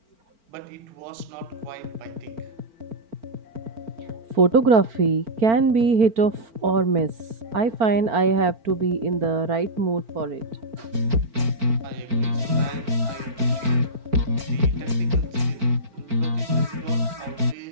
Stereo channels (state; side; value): late; left; 4.4 ms